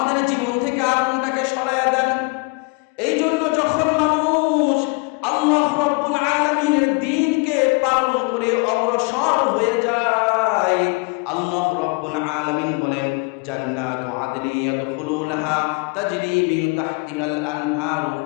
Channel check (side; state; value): right; quieter; 30.9 dB